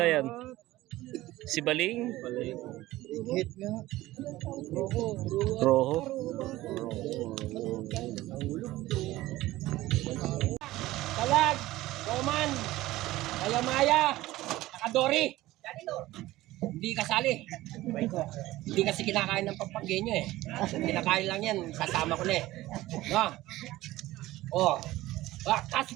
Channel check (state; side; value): quieter; left; 17.1 dB